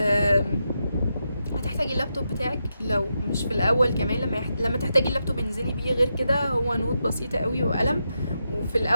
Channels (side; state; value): both; inverted; correlation -0.85